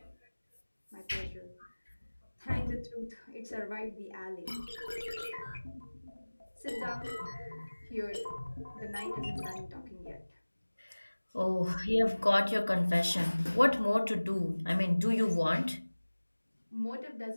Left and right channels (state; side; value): inverted; both; correlation -1.00